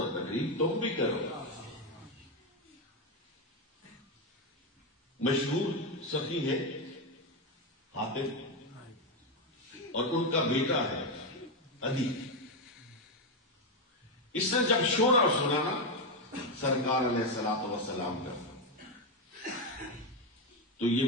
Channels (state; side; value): normal; both; correlation 0.07